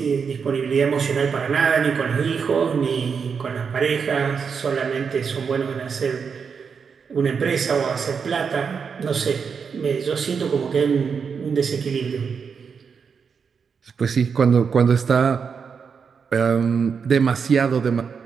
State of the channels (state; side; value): quieter; left; 6.1 dB